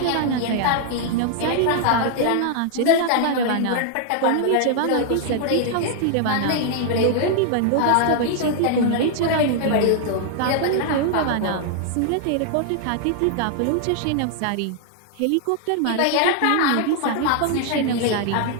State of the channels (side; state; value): both; different; correlation 0.00